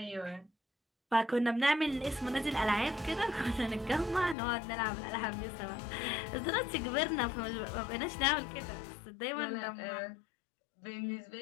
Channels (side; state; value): right; drops out; at 4.4 s